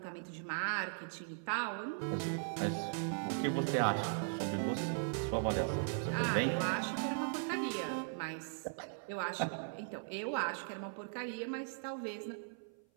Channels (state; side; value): silent; left; 52 dB below the other